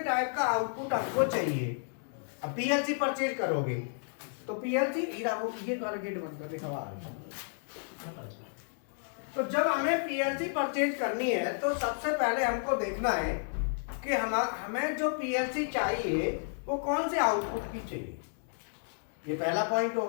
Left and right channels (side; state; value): right; silent; 56 dB below the other